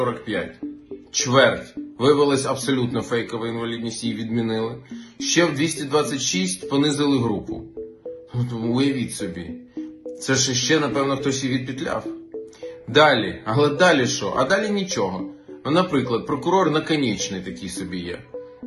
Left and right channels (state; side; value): identical; both; correlation 1.00